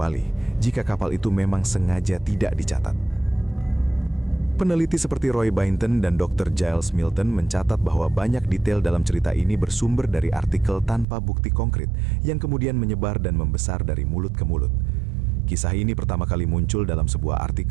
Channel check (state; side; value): drops out; left; at 11.1 s